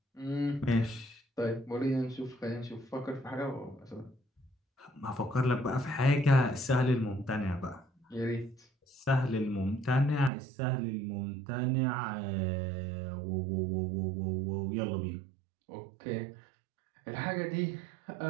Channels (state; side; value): drops out; left; at 10.3 s